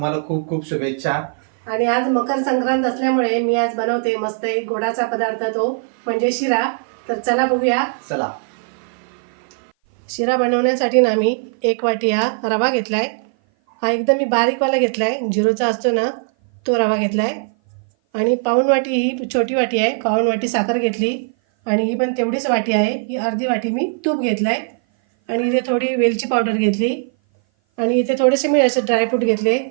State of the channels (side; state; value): left; silent; 57 dB below the other